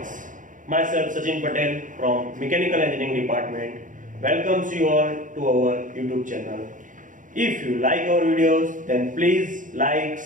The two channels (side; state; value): left; late; 0.38 ms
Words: myself Sachin Patel from Mechanical Engineering Department welcomes you all to our YouTube channel. If you like our videos, then please like,